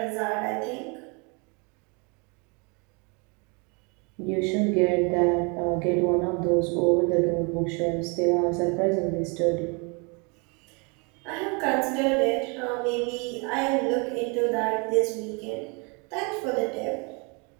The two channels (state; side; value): quieter; left; 32.4 dB